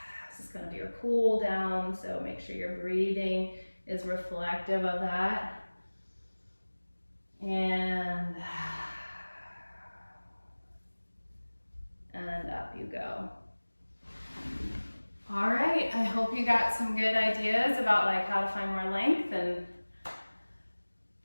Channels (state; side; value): inverted; both; correlation -1.00